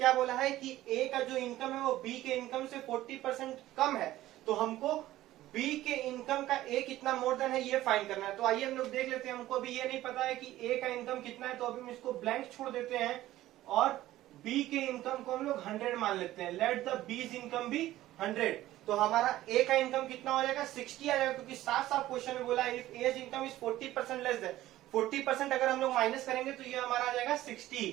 बोला है कि ए का जो इनकम है वो बी के इनकम से 40% कम है, तो हमको बी के इनकम का ए कितना मोर देन है ये फाइंड करना है। तो आइए हम लोग देख लेते हैं। हमको अभी ये नहीं पता है कि ए का इनकम कितना है, तो अभी हम इसको ब्लैंक छोड़ देते हैं और बी के इनकम को हम लोग 100 मान लेते हैं। Let the B's income be 100। तो हमारा ए का इनकम कितना हो जाएगा, 60 आ जाएगा, क्योंकि साफ साफ क्वेश्चन में बोला है if A's income is 40% less than, 40% अगर हम लोग माइनस करेंगे तो ये हमारा आ जाएगा 60।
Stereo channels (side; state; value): left; quieter; 15.1 dB